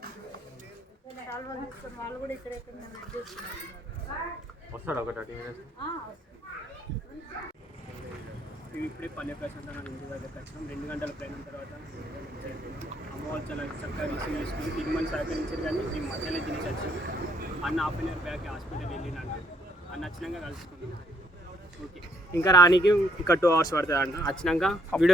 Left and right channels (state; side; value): normal; both; correlation 0.69